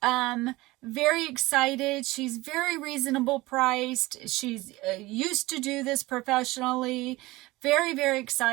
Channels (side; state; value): left; quieter; 20.2 dB